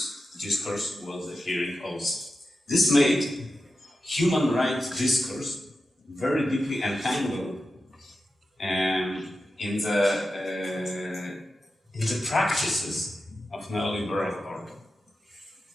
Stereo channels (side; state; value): both; normal; correlation 0.91